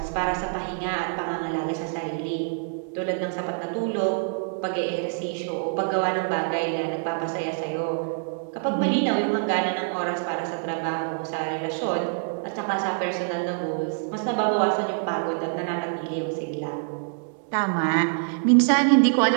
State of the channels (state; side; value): silent; left; digital silence